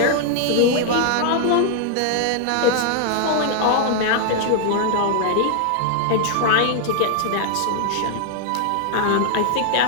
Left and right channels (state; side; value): different; both; correlation 0.00